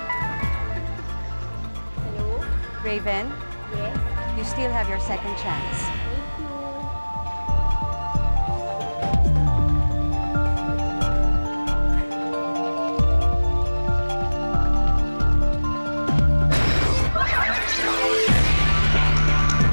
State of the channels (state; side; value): inverted; both; correlation -1.00